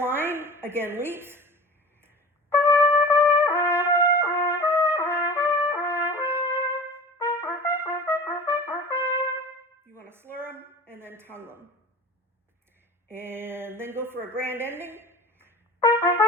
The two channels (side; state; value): both; normal; correlation 0.36